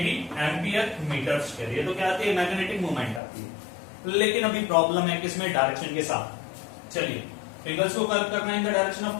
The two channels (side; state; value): right; drops out; at 3.2 s